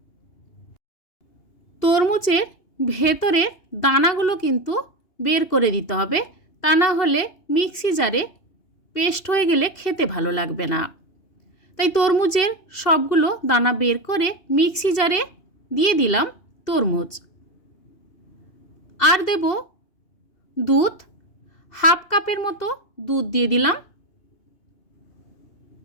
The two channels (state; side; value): late; right; 2.8 ms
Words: তরমুজের ভেতরে দানাগুলো কিন্তু বের করে দিতে হবে, তা না হলে মিক্সি জারে পেস্ট হয়ে গেলে খেতে ভালো লাগবে না। তাই তরমুজের সবগুলো দানা বের করে মিক্সি জারে দিয়ে দিলাম তরমুজ। আর দেব দুধ, হাফ কাপের মতো দুধ দিয়ে দিলাম।